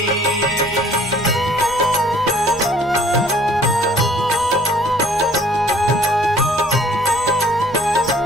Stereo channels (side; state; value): both; normal; correlation 0.57